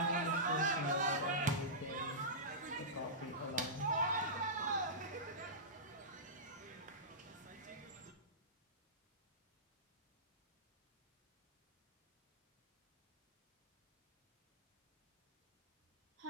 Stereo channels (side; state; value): both; normal; correlation -0.17